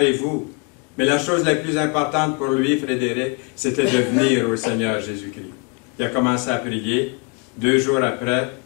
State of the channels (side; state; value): right; quieter; 32.3 dB